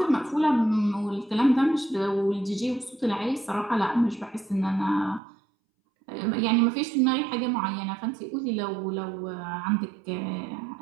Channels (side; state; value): left; drops out; at 5.2 s